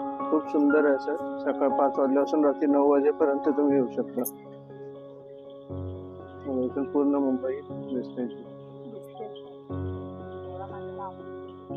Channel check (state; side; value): identical; both; correlation 1.00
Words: खूप सुंदर आहे असं. सकाळ 5 वाजल्यापासून रात्री 9 वाजेपर्यंत तुम्ही येऊ शकता. इथून पूर्ण मुंबई दिसते.